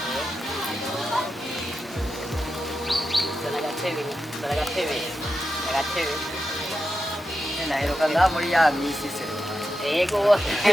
Agatebe. Naheruka ngaha muri ya misi se. Ego.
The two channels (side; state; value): both; normal; correlation 0.89